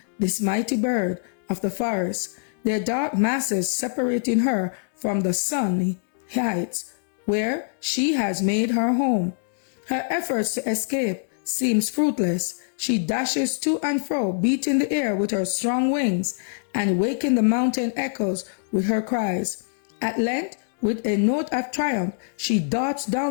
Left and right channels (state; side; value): silent; right; digital silence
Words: this mighty bird of the forest, their dark masses separating her from the sunny heights where she has made her home. Her efforts to escape seems fruitless. She dashes to and fro, beating the air with her strong wings and waking the mountain echoes with her cries. At length, with a note of triumph, she darts